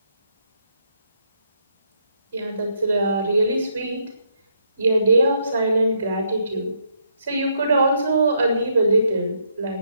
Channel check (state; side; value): inverted; both; correlation -0.75